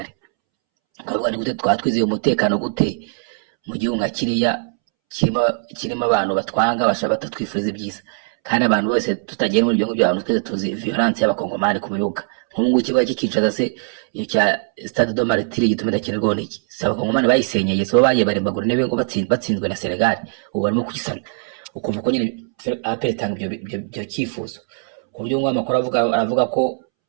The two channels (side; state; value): left; silent; 65 dB below the other